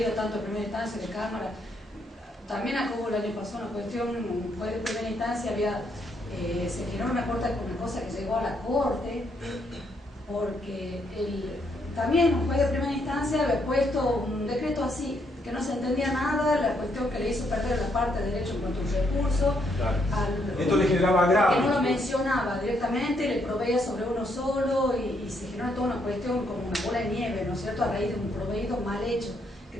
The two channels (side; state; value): both; normal; correlation 0.74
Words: tanto de primera instancia de Cámara. También acá hubo el año pasado una cuestión, fue de primera instancia, se generó una cosa que llegó a la Corte, porque también un juez de primera instancia había puesto un decreto así, que no se entendía nada, la cuestión que le hizo perder la parte de derecho en cuanto a un recurso. Claro. Esto le generaba grave. Que no lo mencionaba directamente, le proveía sobre uno solo y se generó toda una cuestión como una bola de nieve, ¿no es cierto?, a raíz de un proveído mal hecho, que